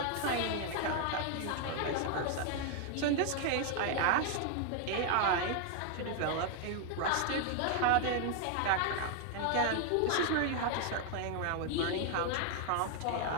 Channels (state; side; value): different; both; correlation 0.00